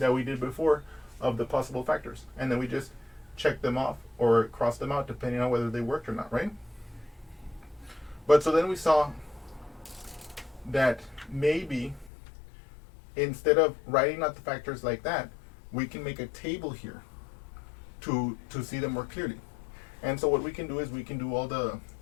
we did before of the possible factors. And then we just check them off or cross them out depending on whether they worked or not, right? But so then we saw that maybe instead of writing out the factors like that, we can make a table here to see them more clearly. And so what we can do is we can do all the,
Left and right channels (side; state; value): right; drops out; at 12.1 s